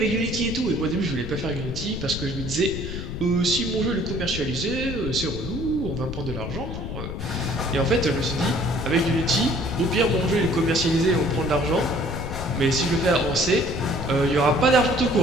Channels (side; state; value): left; noise; rumble, 6 dB below the sound